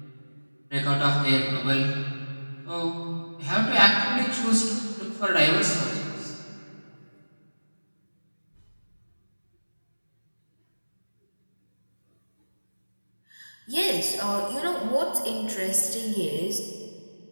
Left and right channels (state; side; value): inverted; both; correlation -1.00